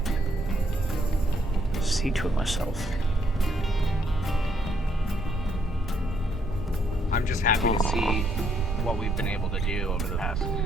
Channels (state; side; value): normal; both; correlation 0.72